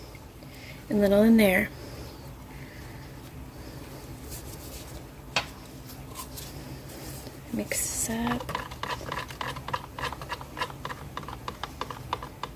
and a little in there. Mix this up.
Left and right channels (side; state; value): both; identical; correlation 1.00